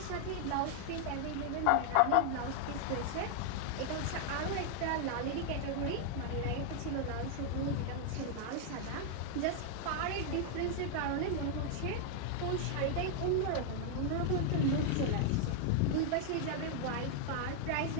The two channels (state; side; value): different; both; correlation 0.00